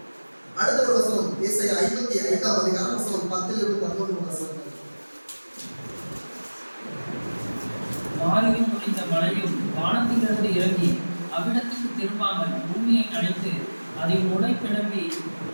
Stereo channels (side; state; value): both; inverted; correlation -1.00